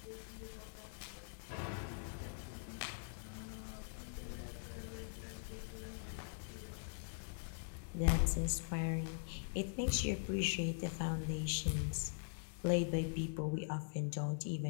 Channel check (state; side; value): silent; right; digital silence